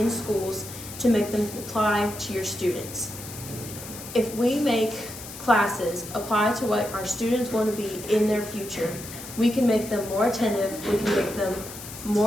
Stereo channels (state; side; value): noise; left; hiss, 12 dB below the sound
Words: schools to make them apply to your students. If we make classes apply to what our students want to be in their future, we can make them more attentive, we can make them